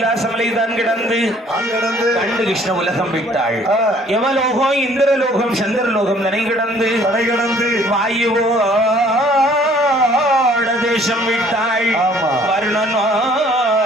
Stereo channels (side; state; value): both; normal; correlation 0.58